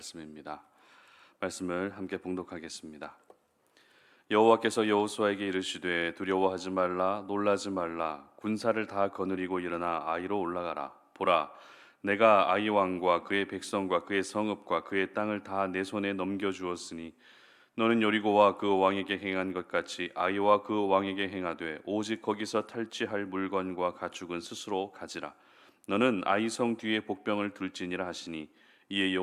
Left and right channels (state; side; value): identical; both; correlation 1.00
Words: 말씀을 함께 봉독하겠습니다. 여호와께서 여호수아에게 이르시되 두려워하지 말라 놀라지 말라 군사를 다 거느리고 일어나 아이로 올라가라. 보라, 내가 아이 왕과 그의 백성과 그의 성읍과 그의 땅을 다 내 손에 넘겨 주었으니 너는 여리고와 그 왕에게 행한 것 같이 아이와 그 왕에게 행하되 오직 거기서 탈취할 물건과 가축은 스스로 가지라. 너는 아이 성 뒤에 복병을 둘지니라 하시니 이에